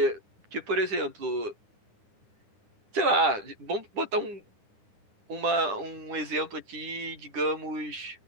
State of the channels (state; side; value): late; left; 10 ms